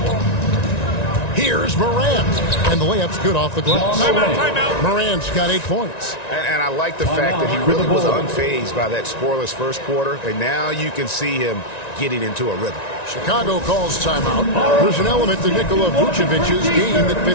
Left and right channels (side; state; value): right; late; 1.9 ms